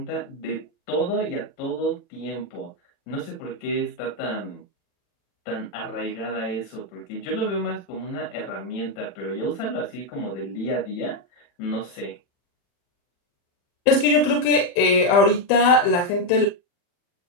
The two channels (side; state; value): right; late; 40 ms